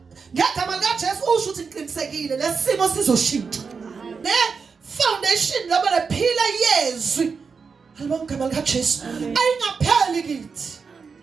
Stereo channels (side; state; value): left; quieter; 5.3 dB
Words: ngegama likaJesu usho ukuthi ngiqinisekile lesimo sizoshintsha. Ne foundation laba lephila yezwi. Halibona ngegama likaJesu ayingapheli kithi.